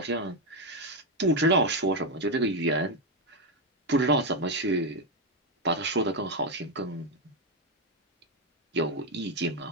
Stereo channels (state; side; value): normal; both; correlation 0.05